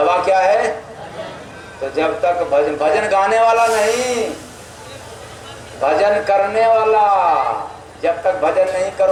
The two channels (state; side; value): identical; both; correlation 1.00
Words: क्या है? तो जब तक भजन गाने वाला नहीं, भजन करने वाला, जब तक भजन नहीं